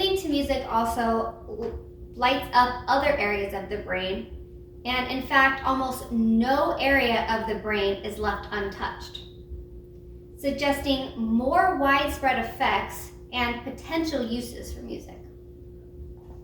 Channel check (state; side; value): identical; both; correlation 1.00